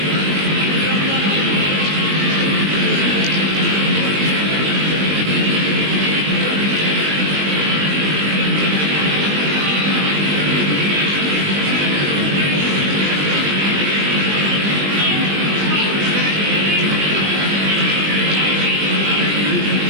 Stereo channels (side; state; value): left; late; 20 ms